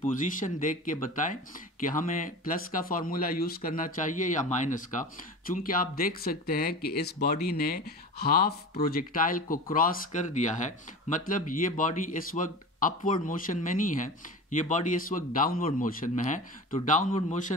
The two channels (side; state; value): both; normal; correlation 0.32